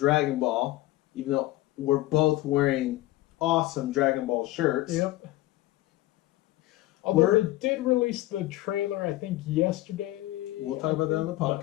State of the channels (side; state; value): right; quieter; 16.5 dB